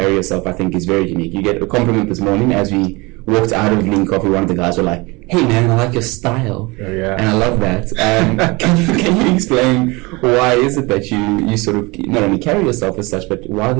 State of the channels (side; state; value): left; quieter; 25.0 dB